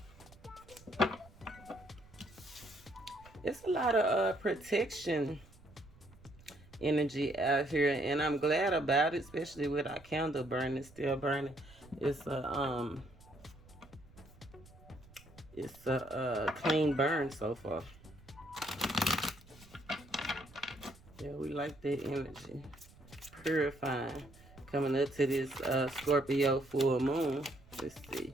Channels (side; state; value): right; noise; rumble, 23 dB below the sound